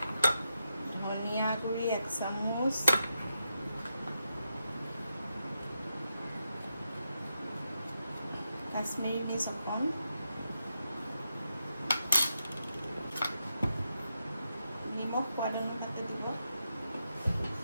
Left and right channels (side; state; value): both; inverted; correlation -0.86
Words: ধনিয়া গুড়ি 1 চামুচ, কাশ্মীৰী মিৰ্চ অকণ, নিমখ সোৱাদ অনুপাতে দিব,